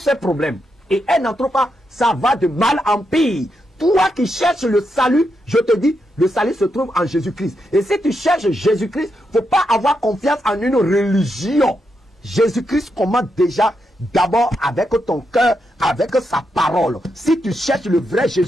problèmes. Et elle n'en trouve pas, ça va de mal en pire. Toi qui cherches le salut, je te dis, le salut se trouve en Jésus-Christ. Et si tu cherches Jésus-Christ, il ne faut pas avoir confiance en une religion. Jésus-Christ commande déjà d'abord avec ton cœur, avec sa parole. Si tu cherches le vrai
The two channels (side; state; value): both; normal; correlation 0.83